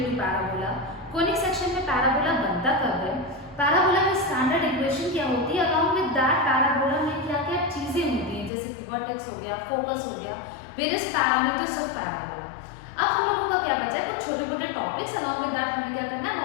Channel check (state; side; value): drops out; right; at 8.5 s